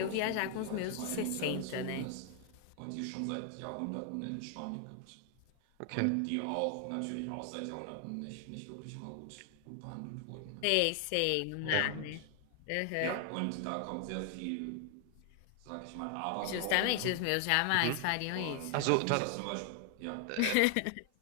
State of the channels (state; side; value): different; both; correlation 0.00